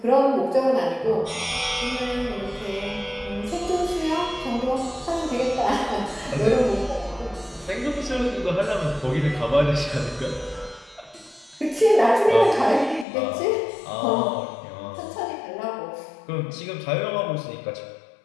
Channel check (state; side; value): drops out; right; at 13.1 s